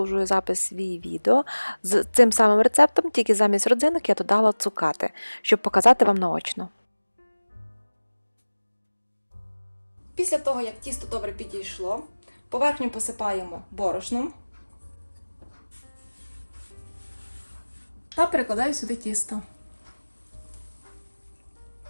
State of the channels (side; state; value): both; inverted; correlation -1.00